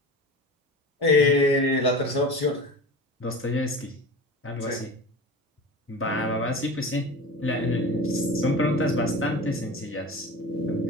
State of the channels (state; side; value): normal; both; correlation 0.33